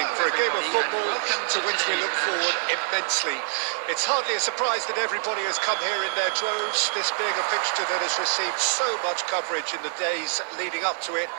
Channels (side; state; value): left; silent; digital silence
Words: for a game of football to which we look forward immensely. It's hardly a surprise that everybody has come here in their droves, this being a fixture that has received so much coverage in the days leading up to it.